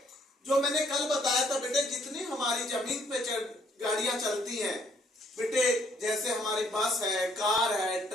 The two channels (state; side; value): normal; both; correlation 0.67